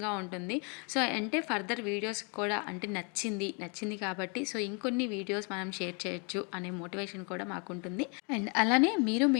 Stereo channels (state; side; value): quieter; right; 34.9 dB